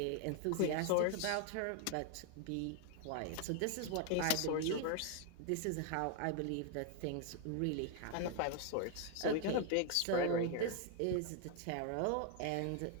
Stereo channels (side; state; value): both; different; correlation 0.00